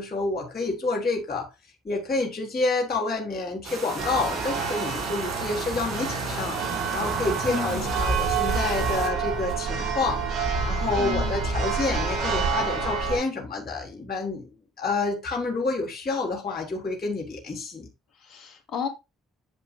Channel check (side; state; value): both; normal; correlation 0.49